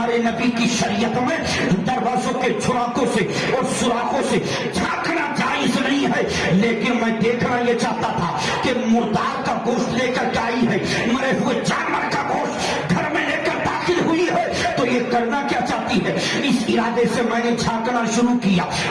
नबी की शरीयत में दरवाजों के छुराकों से और सुराखों से झांकना जायज नहीं है, लेकिन मैं देखना यह चाहता था कि मुर्दार का गोश्त लेकर के आई है, मरे हुए जानवर का गोश्त घर में लेकर दाखिल हुई है, तो ये करना क्या चाहती है। इस इरादे से मैंने झांकना शुरू किया,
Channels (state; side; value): identical; both; correlation 1.00